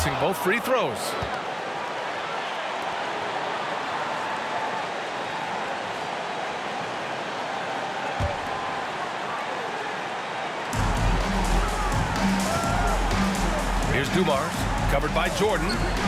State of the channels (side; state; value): both; identical; correlation 1.00